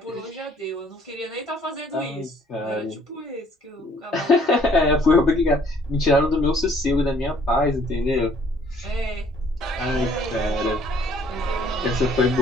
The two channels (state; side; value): normal; both; correlation 0.61